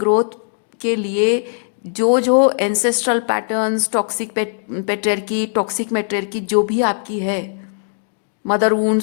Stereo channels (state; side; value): silent; right; digital silence